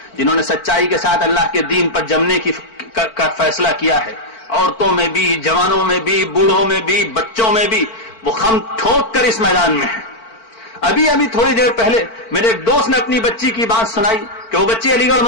جنہوں نے سچائی کے ساتھ اللہ کے دین پر جمنے کا فیصلہ کیا ہے، عورتوں میں بھی، جوانوں میں بھی، بوڑھوں میں بھی، بچوں میں بھی، وہ خم ٹھوک کر اس میدان میں ہیں. ابھی تھوڑی دیر پہلے میرے ایک دوست نے اپنی بچی کی بات سنائی کہ وہ بچی علی گڑھ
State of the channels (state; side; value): late; right; 4.5 ms